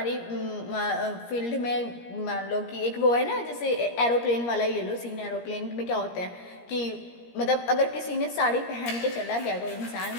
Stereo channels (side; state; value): right; late; 17 ms